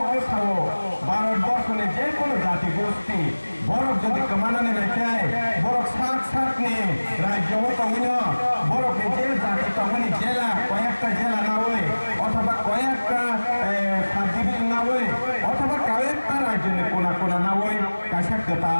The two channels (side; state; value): both; inverted; correlation -1.00